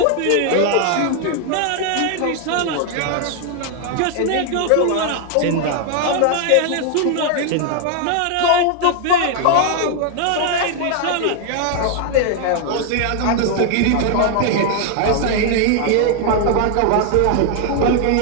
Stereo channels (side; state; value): both; different; correlation 0.00